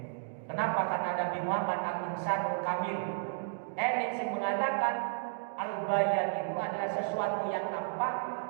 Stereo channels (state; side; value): silent; left; digital silence